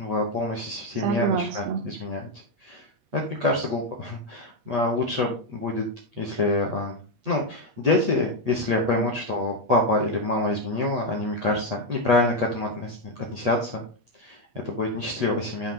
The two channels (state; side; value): late; left; 8.3 ms